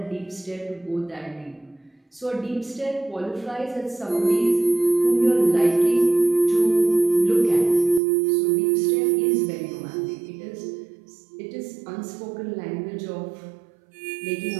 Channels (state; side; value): drops out; left; at 8.0 s